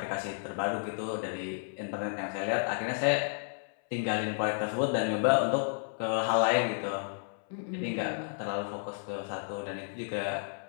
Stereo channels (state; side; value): silent; right; 56 dB below the other